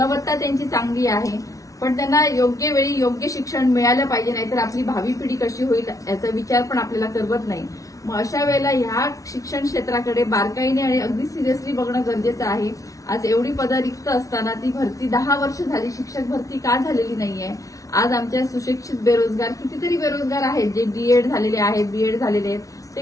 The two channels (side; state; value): right; late; 0.17 ms